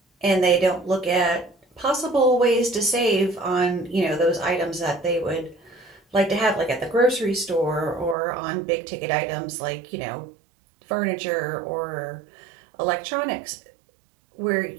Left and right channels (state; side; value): drops out; left; at 8.2 s